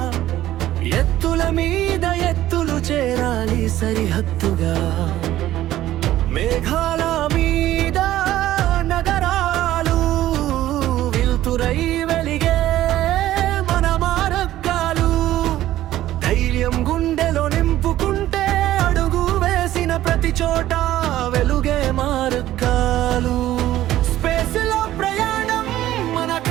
ఎత్తుల మీద ఎత్తులు చేరాలి సరిహద్దుగా. మేఘాల మీద నగరాలు వెలుతురై వెలిగే మన మార్గాలు. ధైర్యం గుండెలో నింపుకుంటే అడుగు వేసిన ప్రతి చోట వెలుగే మార్గాలు. స్పేస్ లో ప్రయాణం మన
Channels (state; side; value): quieter; left; 14.0 dB